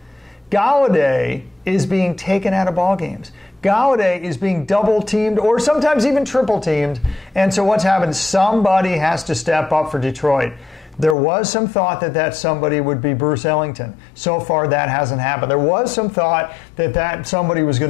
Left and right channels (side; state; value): right; drops out; at 11.2 s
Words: Galladay is being taken out of ball games. Galladay is being double-teamed or sometimes even triple-teamed. And so what's happened? Somebody has to step up for Detroit. There was some thought that somebody would be Bruce Ellington. So far, that hasn't happened. There was some thought that somebody was going